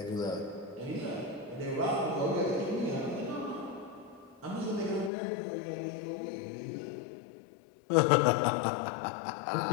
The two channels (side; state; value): right; drops out; at 5.1 s